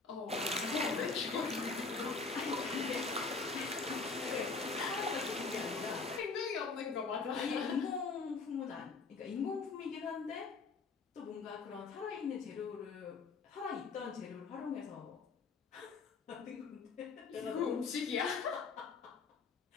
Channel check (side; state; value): right; quieter; 4.4 dB